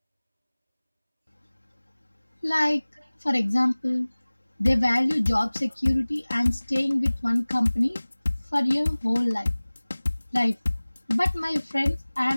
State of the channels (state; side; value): inverted; both; correlation -1.00